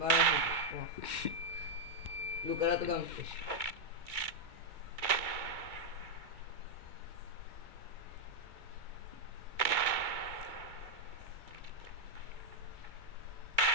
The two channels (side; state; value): left; late; 2.2 ms